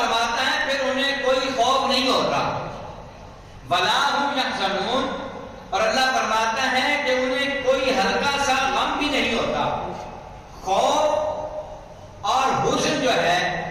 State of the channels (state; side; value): identical; both; correlation 1.00